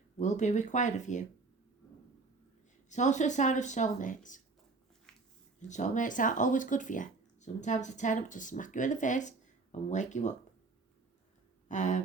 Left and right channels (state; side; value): quieter; left; 3.9 dB